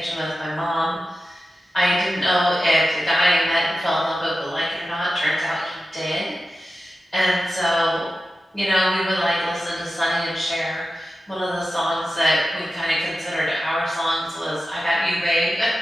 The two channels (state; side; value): normal; both; correlation 0.93